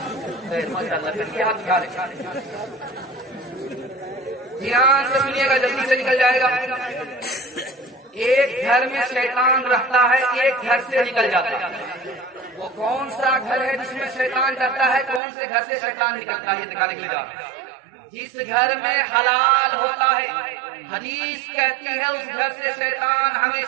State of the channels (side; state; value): left; drops out; at 15.2 s